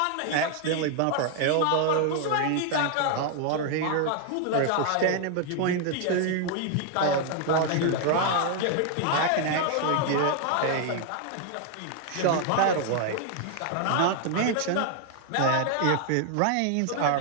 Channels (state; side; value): different; both; correlation 0.00